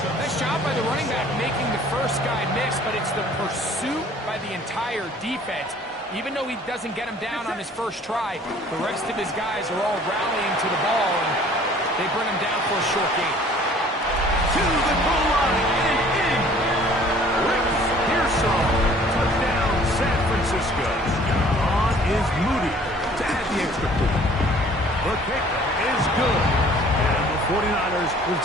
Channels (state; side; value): normal; both; correlation 0.53